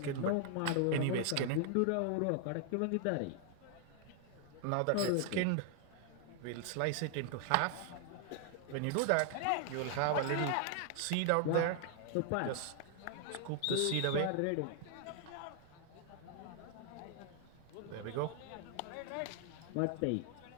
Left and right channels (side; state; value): both; different; correlation 0.00